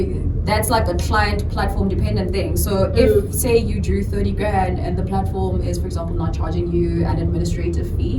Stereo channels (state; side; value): identical; both; correlation 1.00